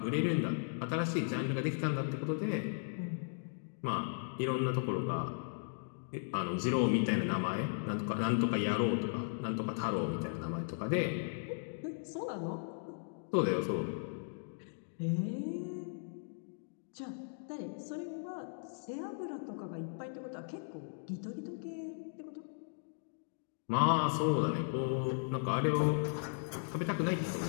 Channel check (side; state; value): right; silent; digital silence